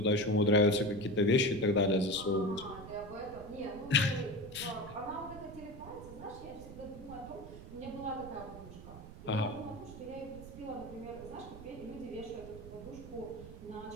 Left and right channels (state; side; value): noise; right; rumble, 14 dB below the sound